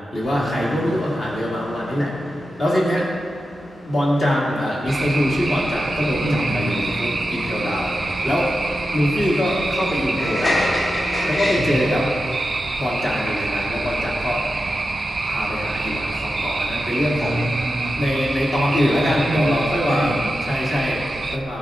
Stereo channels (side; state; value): both; normal; correlation 0.91